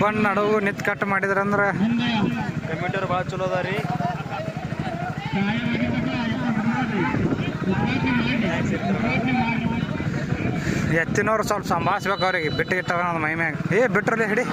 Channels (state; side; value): identical; both; correlation 1.00